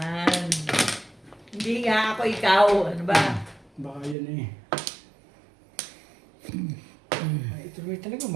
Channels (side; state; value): left; drops out; at 4.2 s